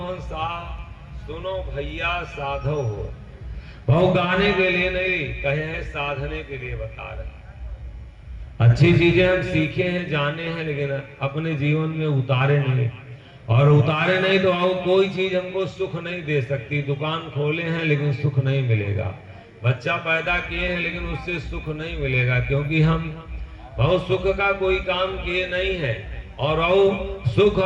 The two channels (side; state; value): both; identical; correlation 1.00